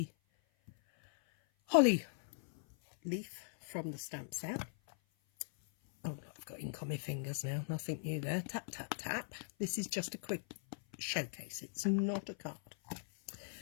holly leaf from the stamp set. Oh, I've got ink on my fingers now, nothing new there. Tap, tap, tap. This is just a quick showcase, it's not a card.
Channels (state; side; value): silent; right; 51 dB below the other